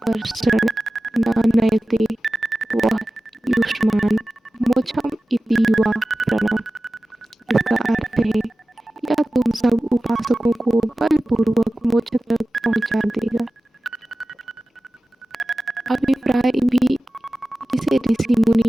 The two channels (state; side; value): normal; both; correlation 0.95